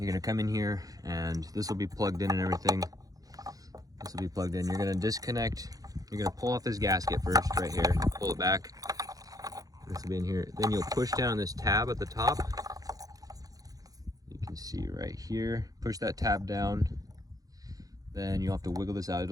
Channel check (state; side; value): late; left; 0.17 ms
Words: to come in here and this will be plugged in and everything. This will be plugged in. You're going to disconnect. You're going to pull off this gasket first right here. Pull it back. This will be in here. Then you'll push down this tab at the top. You can see right here. Push that tab down. Then you'll have to wiggle this out.